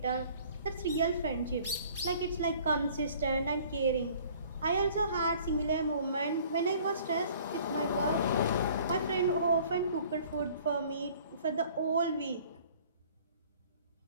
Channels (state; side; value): inverted; both; correlation -0.53